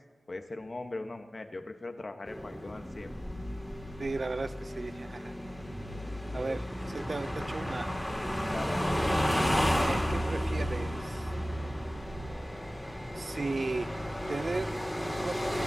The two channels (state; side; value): normal; both; correlation 0.97